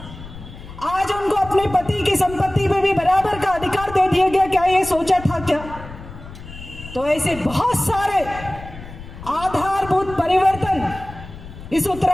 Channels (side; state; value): left; noise; rumble, 14 dB below the sound